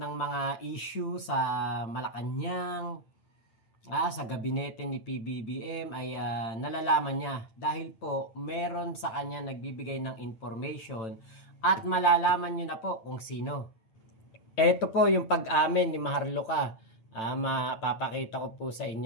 mga issue sa Malacanang, sa gabinete ni PBBM ay nalalaman niya dahil po meron sa kanya nagbibigay ng information at malalaman niyo na po kung sino. Ito po yung pag-amin ni Maharlika. Mapapakita ko po sa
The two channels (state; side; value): late; right; 9.0 ms